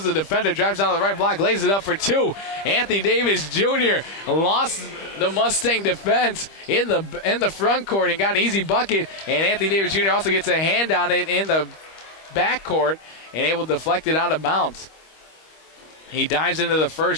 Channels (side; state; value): right; late; 25 ms